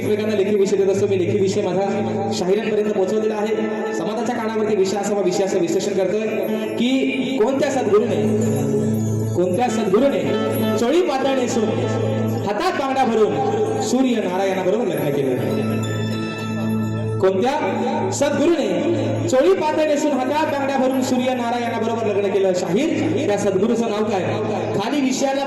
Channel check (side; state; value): both; identical; correlation 1.00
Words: लेखी विषय देत असतो मी लेखी विषय माझा शाहिरांपर्यंत पोहोचवलेला आहे समाजाच्या कानावरती विषयाचं विश्लेषण करतोय की कोणत्या सद्गुरूने चोळी पातळ नेसून हातात बांगडा भरून सूर्य नारायणाबरोबर लग्न केलं कोणत्या सद्गुरूने चोळी पातळ नेसून हातात बांगड्या भरून सूर्य नारायणाबरोबर लग्न केलं शाहीर त्या सद्गुरूचं नाव काय खाली विषयाला